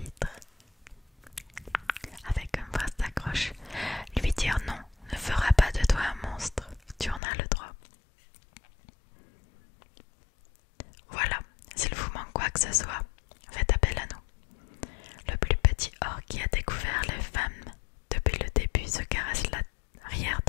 Avec une phrase d'accroche, lui dire non ne fera pas de toi un monstre. Tu en as le droit. que ce soit, faites appel à nous. Le plus petit orc qui a découvert les femmes depuis le début se caresse l'arrière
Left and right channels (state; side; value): drops out; right; at 7.2 s